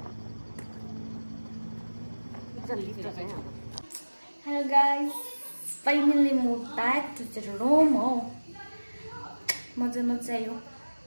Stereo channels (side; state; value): both; inverted; correlation -1.00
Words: Hello guys, finally moved back to the room. Oh, मजा आयो.